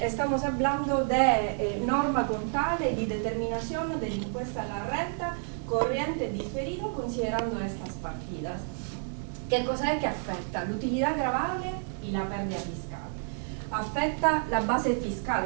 hablando de norma contable y de determinación del impuesto a la renta corriente diferido considerando estas partidas. ¿Qué cosa es que afecta? La utilidad gravable y la pérdida fiscal. Afecta las bases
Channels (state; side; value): silent; left; 58 dB below the other